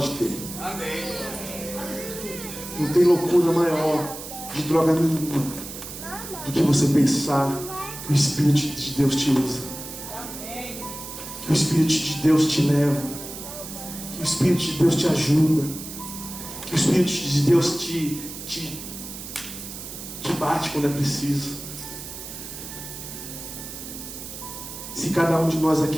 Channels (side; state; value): right; noise; hiss, 11 dB below the sound